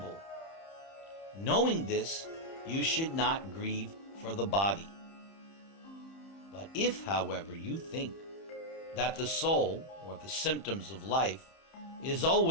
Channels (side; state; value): right; late; 30 ms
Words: Knowing this, you should not grieve for the body. But if, however, you think that the soul, or the symptoms of life, is